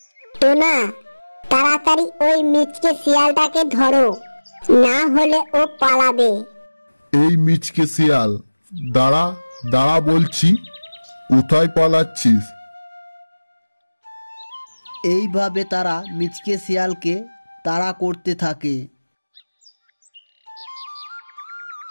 টোনা, তাড়াতাড়ি ওই মিচকে শিয়ালটাকে ধরো, না হলে ও পালাবে। এই মিচকে শিয়াল, দাঁড়া দাঁড়া বলছি, কোথায় পালাচ্ছিস? এইভাবে তারা মিচকে শিয়ালকে তাড়া করতে থাকে।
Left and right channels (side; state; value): both; inverted; correlation -1.00